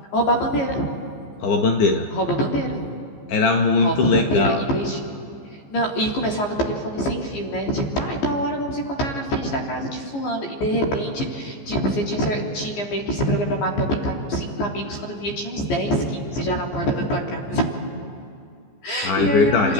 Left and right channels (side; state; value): right; late; 15 ms